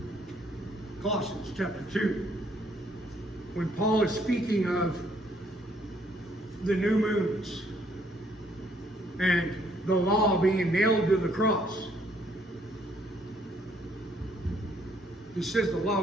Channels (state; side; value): normal; both; correlation 0.67